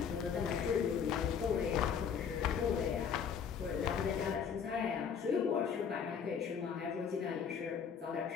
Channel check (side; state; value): right; quieter; 7.1 dB